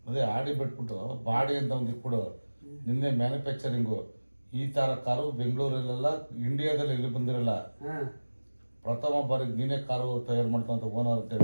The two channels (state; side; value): inverted; both; correlation -1.00